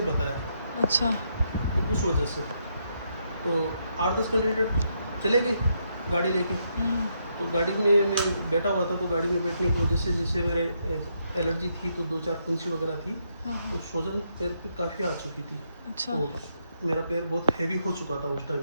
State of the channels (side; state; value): both; inverted; correlation -0.77